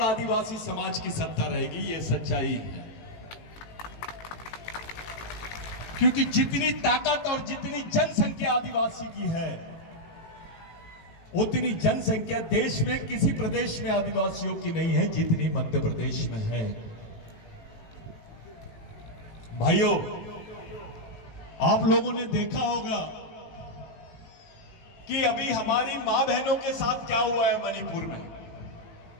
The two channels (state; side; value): late; right; 18 ms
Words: आदिवासी समाज की सत्ता रहेगी। यह सच्चाई है। क्योंकि जितनी ताकत और जितनी जनसंख्या आदिवासी की है, उतनी जनसंख्या देश में किसी प्रदेश में आदिवासियों की नहीं है जितनी मध्य प्रदेश में है। भाइयों, आप लोगों ने देखा होगा कि अभी हमारी मां बहनों के साथ क्या हुआ है मणिपुर में।